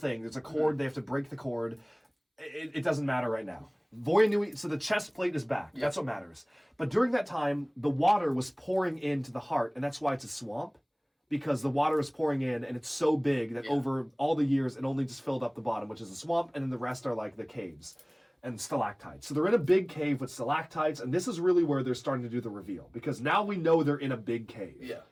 There's a cord. They have to break the cord. It doesn't matter right now. Voyanui, so the chest plate is back. That's what matters. But during that time, the water was pouring into the heart, and that's why it's a swamp, because the water is pouring in, and it's so big that over all the years, it only just filled up the bottom, which is a swamp, and then the rest are like the caves and stalactites. So they're in a big cave with stalactites, and this is really where they're starting to do the reveal, because now we know they're in a big cave. Yeah.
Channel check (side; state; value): both; identical; correlation 1.00